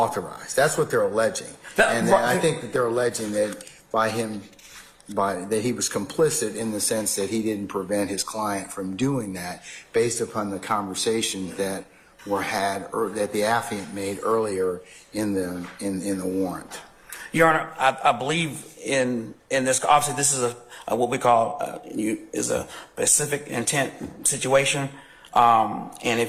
That's what they're alleging. And I think that they're alleging that that he was complicit in the sense that he didn't prevent his client from doing that based upon the conversations that were had or that the affiant made earlier in the warrant. Your Honor, I believe in this. Obviously, this is what we call is a specific intent situation, and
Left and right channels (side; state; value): both; identical; correlation 1.00